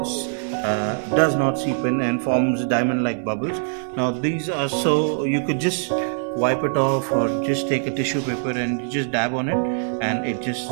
does not seep in and forms diamond like bubbles. Now these are, so you could just wipe it off or just take a tissue paper and just dab on it, and it just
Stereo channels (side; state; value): left; silent; 58 dB below the other